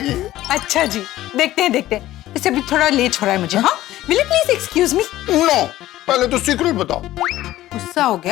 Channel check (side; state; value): right; quieter; 15.0 dB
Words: अच्छा जी, देखते हैं देखते हैं। इसे अभी थोड़ा लेट हो रहा है मुझे। हाँ, will you please excuse me? No, पहले तो सीक्रेट बताओ। गुस्सा हो